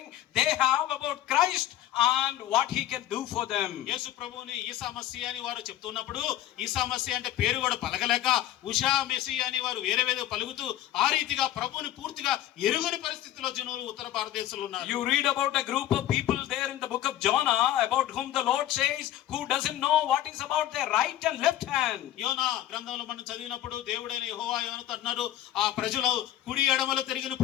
they have about Christ and what he can do for them. యేసు ప్రభువుని ఈసా మసీహ్ అని వారు చెప్తున్నప్పుడు ఈసా మసీహ్ అంటే పేరు కూడా పలకలేక ఉషా మెసీహ్ అని వారు వేరే పలుకుతూ ఆ రీతిగా ప్రభువుని పూర్తిగా ఎరుగని పరిస్థితిలో జనులు ఉత్తర భారతదేశంలో ఉన్నారు. You read about a group of people there in the book of Jonah about whom the Lord says who doesn't know what is about their right and left hand. యోనా గ్రంథంలో మనం చదివినప్పుడు దేవుడైన యెహోవా యోనాతో అన్నారు ఆ ప్రజలు కుడి ఎడమలు తిరిగిన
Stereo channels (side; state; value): right; quieter; 13.0 dB